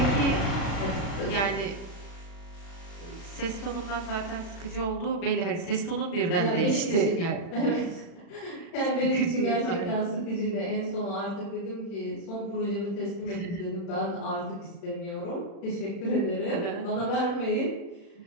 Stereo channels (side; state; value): right; late; 36 ms